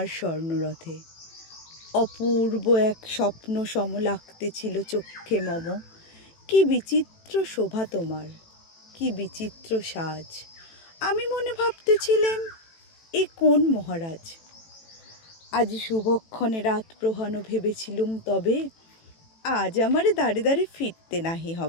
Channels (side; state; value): right; late; 18 ms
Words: স্বর্ণরথে। অপূর্ব এক স্বপ্ন সম লাগতেছিল চক্ষে মম। কি বিচিত্র শোভা তোমার, কি বিচিত্র সাজ। আমি মনে ভাবতেছিলেম, এ কোন মহারাজ। আজি শুভক্ষণে রাত প্রহানো ভেবেছিলুম, তবে আজ আমারে দাঁড়ে দাঁড়ে ফিরতে নাহি